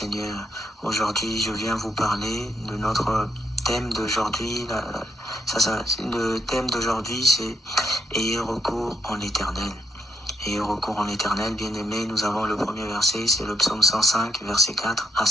aujourd'hui je viens vous parler de notre thème d'aujourd'hui. Le thème d'aujourd'hui c'est « Ayez recours en l'Éternel ». Ayez recours en l'Éternel, bien-aimés, nous avons le premier verset, c'est le psaume 105, verset 4 à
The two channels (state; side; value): normal; both; correlation 0.78